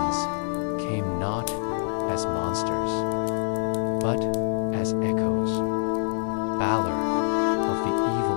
came not as monsters, but as echoes. Balor of the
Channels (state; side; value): silent; right; digital silence